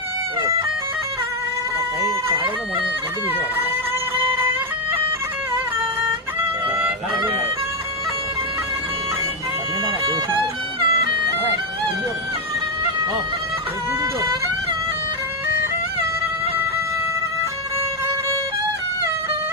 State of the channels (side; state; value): both; normal; correlation 0.04